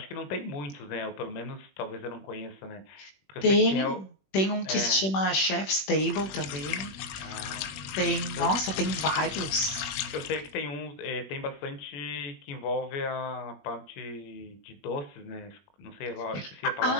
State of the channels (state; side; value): late; right; 21 ms